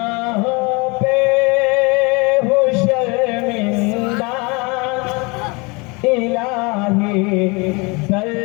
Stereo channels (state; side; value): quieter; right; 28.0 dB